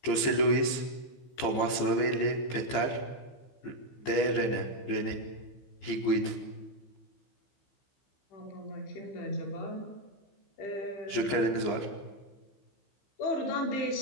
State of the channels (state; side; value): late; right; 15 ms